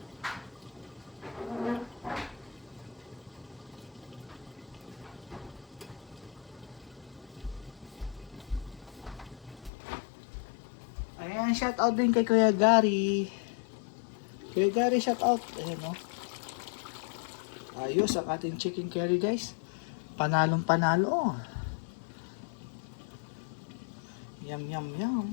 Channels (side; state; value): right; drops out; at 9.7 s